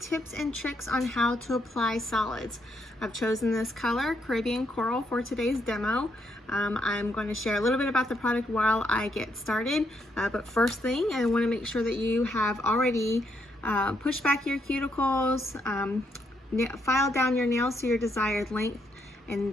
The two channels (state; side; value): normal; both; correlation 0.76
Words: and tricks on how to apply solids. I've chosen this color, Caribbean Coral, for today's demo. I'm going to share a little bit about the product while I get started, but first thing, I want to make sure that you have already pushed back your cuticles, filed down your nails to your desired length,